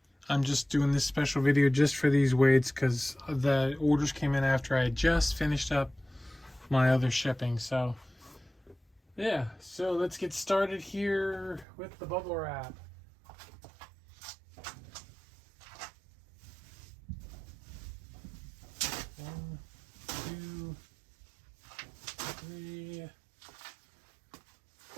I'm just doing this special video just for these wades because the orders came in after I just finished up my other shipping. So yeah, so let's get started here with the bubble wrap. One, two, three.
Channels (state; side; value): drops out; left; at 11.7 s